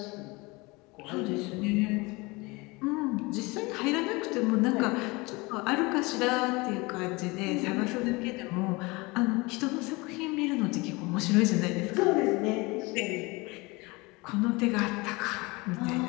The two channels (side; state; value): right; quieter; 24.7 dB